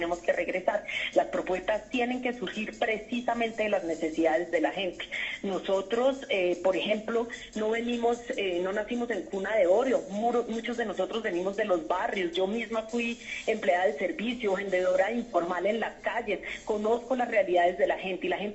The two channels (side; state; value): both; identical; correlation 1.00